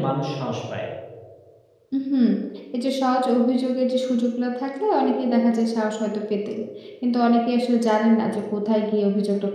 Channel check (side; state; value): both; identical; correlation 1.00